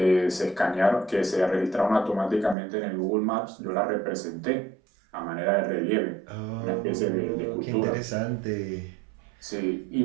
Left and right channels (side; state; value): left; drops out; at 2.6 s